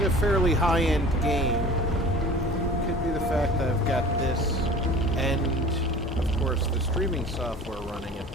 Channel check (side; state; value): both; normal; correlation 0.42